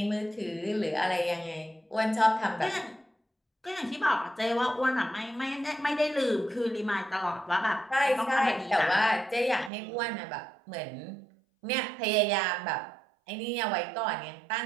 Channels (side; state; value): left; drops out; at 9.7 s